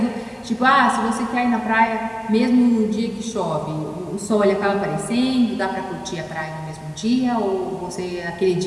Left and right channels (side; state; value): both; identical; correlation 1.00